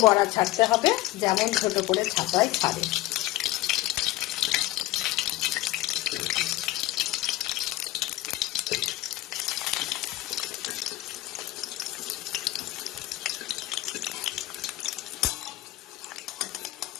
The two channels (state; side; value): quieter; right; 17.2 dB